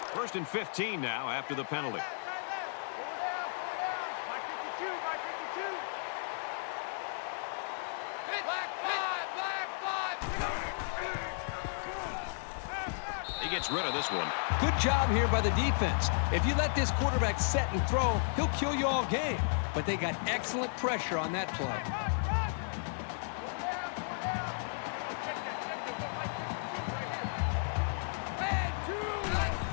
First and 15 now after the penalty. Mike 52, Mike 52. Black five. He gets rid of this one. Good job here by the defense. If you let this quarterback set and throw, he'll kill you all game. But they got excellent pressure on that play.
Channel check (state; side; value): silent; right; 55 dB below the other